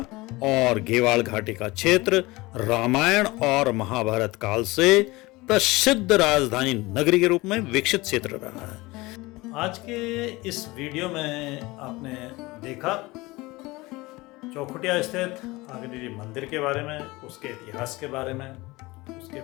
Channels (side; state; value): right; quieter; 21.7 dB